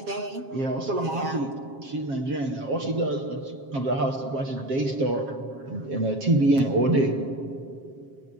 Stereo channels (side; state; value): left; late; 7.4 ms